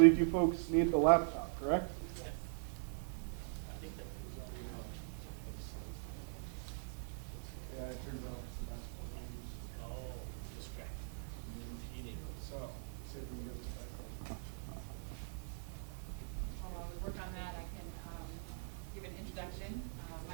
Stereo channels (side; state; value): left; silent; digital silence